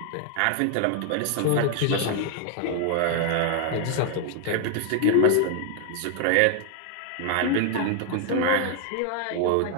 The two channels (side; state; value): both; different; correlation 0.00